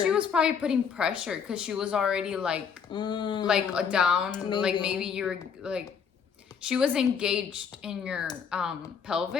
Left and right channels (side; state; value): right; quieter; 6.8 dB